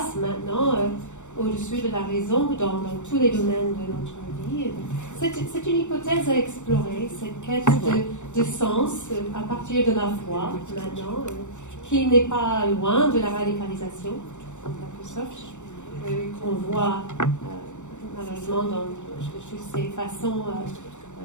maintenant au-dessus de la raison dans tous les domaines de notre vie. C'est une hypothèse à explorer, cette quête de sens à partir de la foi maintenant, qui n'est pas loin de la radicalisation, en quelque sorte. Qu'on voit malheureusement dans toutes ces façons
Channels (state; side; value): late; right; 0.84 ms